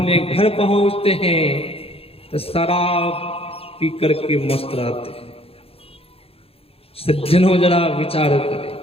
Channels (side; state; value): right; late; 0.28 ms